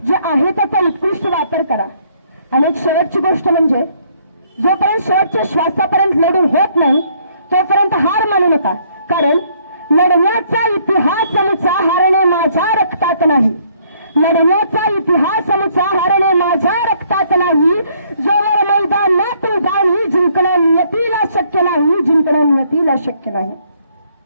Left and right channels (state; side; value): inverted; both; correlation -0.66